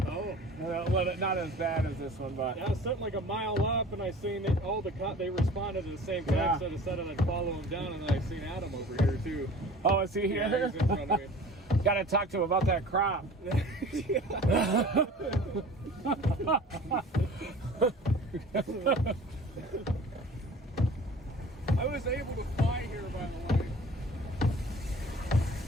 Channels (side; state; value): both; normal; correlation 0.43